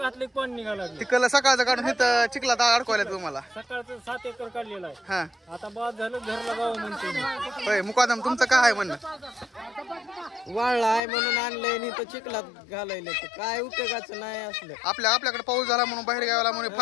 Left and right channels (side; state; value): right; drops out; at 11.0 s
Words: पण निघाला. तिकडला सकाळचं काढून इथं चिखलात अडकवायला तुम्हाला. सकाळचं 7 एकर काढलेला आहे. हा आता बाद झालं घरला गाव म्हणतो. होय. मुकादम तुमचं काय आहे म्हणणं. वाळला आहे म्हणून आणलंय आणि इथं चिखलात घालायला काय उपयोगाचं नाही असलं. आपल्याकडे पाऊस झाला म्हणून बाहेर गावाला म्हणून